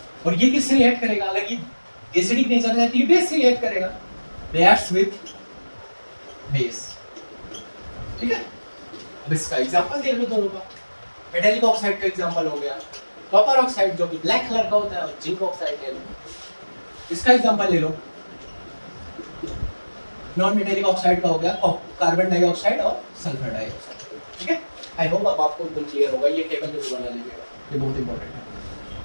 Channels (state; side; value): inverted; both; correlation -1.00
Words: और ये किससे रिएक्ट करेगा, अगर ये एसिडिक नेचर है तो ये बेस से रिएक्ट करेगा, रिएक्ट्स विथ बेस, ठीक है। अब इसका एग्जांपल देख लो दोनों का, मेटालिक ऑक्साइड का एग्जांपल हो गया, कॉपर ऑक्साइड जो कि ब्लैक कलर का होता है, और जिंक ऑक्साइड ले लो, इसका एग्जांपल ले लो, नॉन मेटालिक ऑक्साइड का हो गया कार्बन डाइऑक्साइड और सल्फर डाइऑक्साइड, ठीक है। आई होप अब आपको एकदम क्लियर होगा, ये टेबल जरूर बना लीजिएगा, ये बहुत इंपॉर्टेंट है,